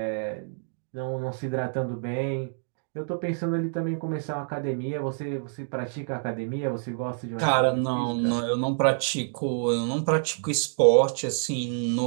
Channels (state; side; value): silent; left; digital silence